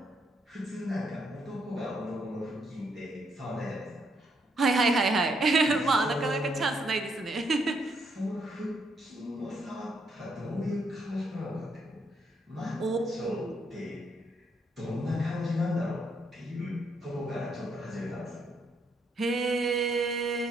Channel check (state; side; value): normal; both; correlation 0.74